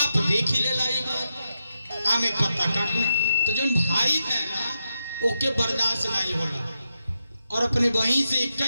देख ही ले लाई बात आमे पत्ता काटना तो जो भाई है ना ओके बर्दाश्त नहीं होला और अपने बहन से एक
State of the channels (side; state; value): both; inverted; correlation -0.87